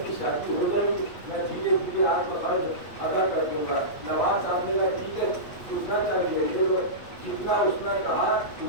کی شادی ہو گئی، میں دھیرے دھیرے آپ کو خرچ ادا کر دوں گا۔ نواب صاحب نے کہا ٹھیک ہے کتنا چاہیے لے لو، جتنا اس نے کہا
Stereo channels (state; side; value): late; right; 8.7 ms